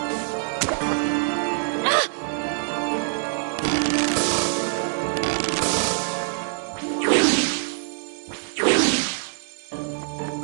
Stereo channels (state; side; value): silent; left; digital silence